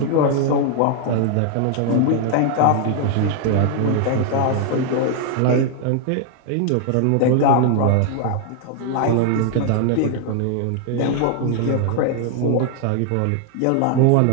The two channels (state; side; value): different; both; correlation 0.00